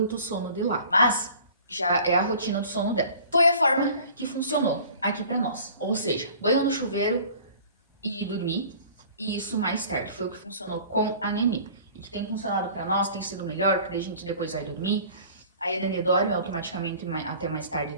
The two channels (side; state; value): both; inverted; correlation -0.47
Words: sono de lá. Mas já é a rotina do sono dela. Foi a forma que funcionou aqui pra nós. Ou seja, banho no chuveiro e dormir. E isso mais tarde foi o que funcionou com a Nenê. E que tem funcionado pra nós, tem sido melhor, porque a gente depois vai dormir. Aí a Nenê dorme automaticamente até mais tarde